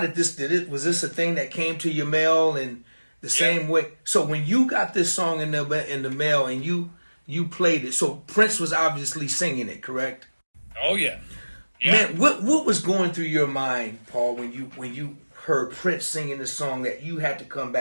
was this a thing that came to your mail and the same way? So when you got this song in the mail and you played it, so Prince was obviously singing it, correct? Oh yeah. Man, what was going through your mind, Paul, when you heard Prince singing the song that you had to come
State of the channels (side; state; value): both; inverted; correlation -1.00